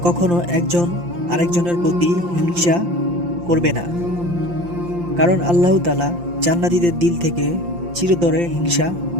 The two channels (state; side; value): late; left; 5.8 ms